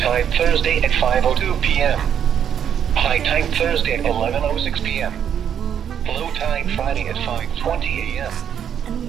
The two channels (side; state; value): left; quieter; 8.8 dB